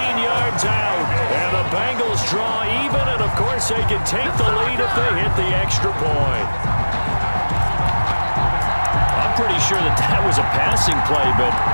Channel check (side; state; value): both; inverted; correlation -1.00